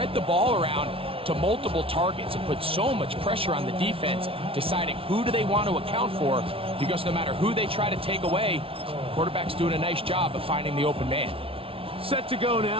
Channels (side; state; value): left; late; 0.26 ms